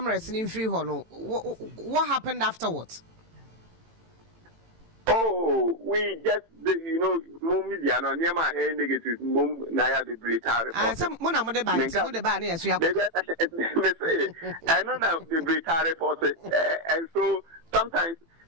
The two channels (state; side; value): late; left; 18 ms